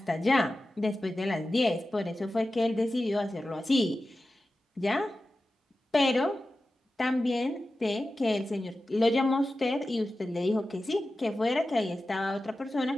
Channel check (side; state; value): both; normal; correlation 0.94